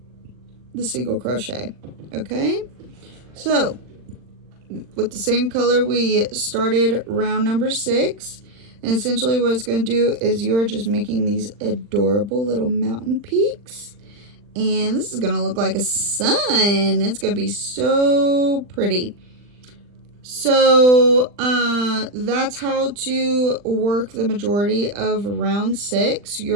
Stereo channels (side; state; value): left; late; 40 ms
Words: the single crochet. Okay, so with the same color we started round number 6, and essentially what it's going to do is you are just making these adorable little mountain peaks, and this is going to look like a sun. It's going to be so pretty. So that's how to work the majority of round 6.